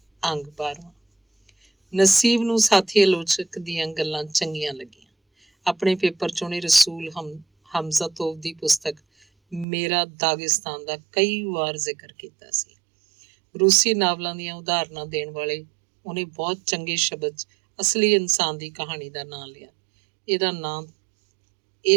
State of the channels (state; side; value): drops out; left; at 9.7 s